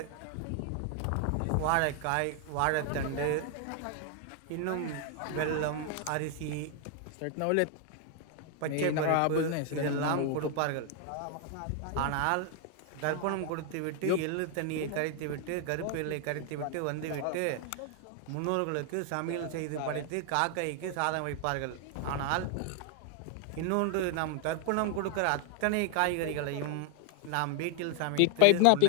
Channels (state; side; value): different; both; correlation 0.00